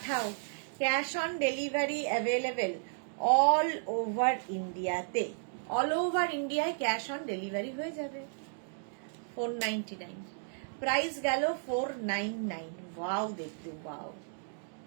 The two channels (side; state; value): left; silent; digital silence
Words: cash on delivery available all over ইন্ডিয়াতে। অল ওভার ইন্ডিয়ায় ক্যাশ অন ডেলিভারি হয়ে যাবে। 499 প্রাইস গেল। 499। ওয়াও, দেখতে ওয়াও।